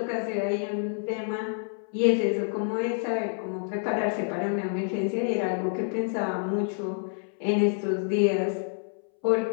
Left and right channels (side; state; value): right; silent; 59 dB below the other